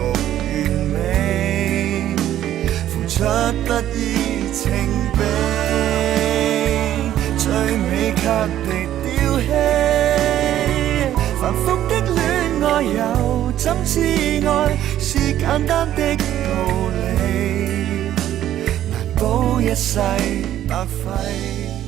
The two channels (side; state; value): left; quieter; 12.1 dB